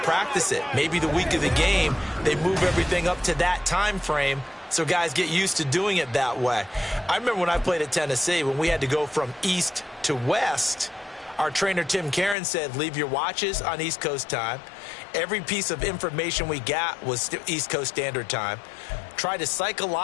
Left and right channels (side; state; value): right; drops out; at 12.4 s